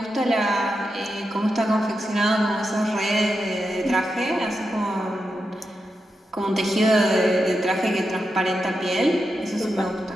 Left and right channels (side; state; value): both; normal; correlation 0.87